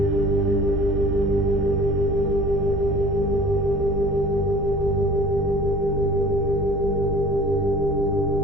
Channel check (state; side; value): normal; both; correlation 0.46